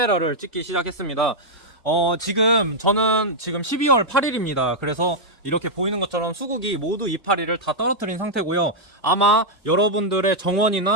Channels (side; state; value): both; normal; correlation -0.05